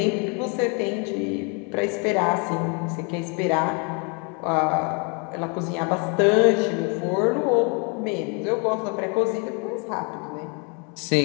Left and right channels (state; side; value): quieter; right; 34.7 dB